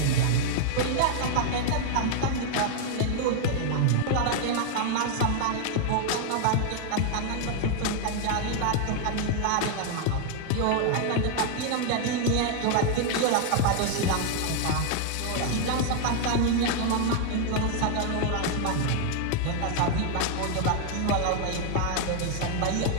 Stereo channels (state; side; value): different; both; correlation 0.00